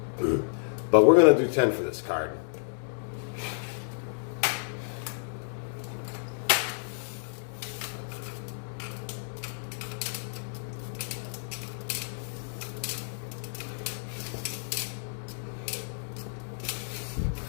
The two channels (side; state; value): right; silent; 57 dB below the other